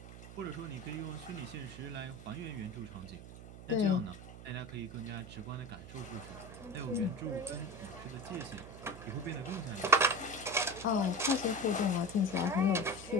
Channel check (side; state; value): right; noise; hum, 14 dB below the sound